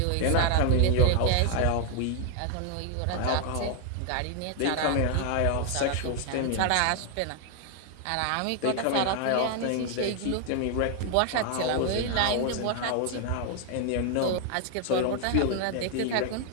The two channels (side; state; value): both; different; correlation 0.00